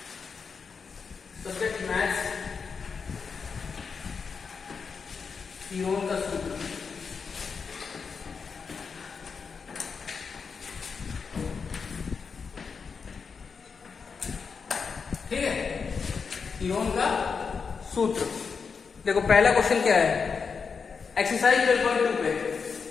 सब्जेक्ट मैथ्स, थ्योरम का सूत्र। ठीक है, थ्योरम का सूत्र। देखो पहला क्वेश्चन क्या है, एक्सरसाइज 12.2 पे।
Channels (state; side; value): quieter; right; 5.6 dB